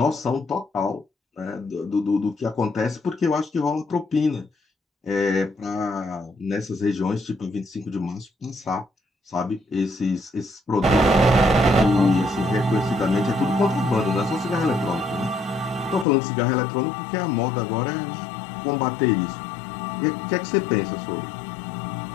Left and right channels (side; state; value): right; drops out; at 16.1 s